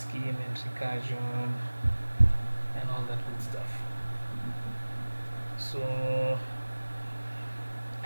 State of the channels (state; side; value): inverted; both; correlation -1.00